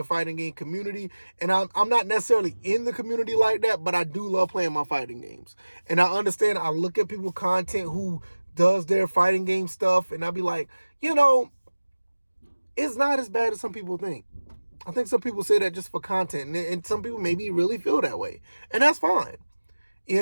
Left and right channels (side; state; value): both; inverted; correlation -1.00